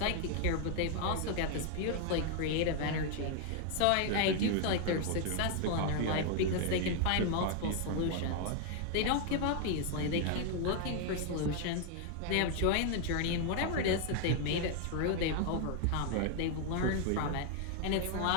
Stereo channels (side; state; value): both; different; correlation 0.00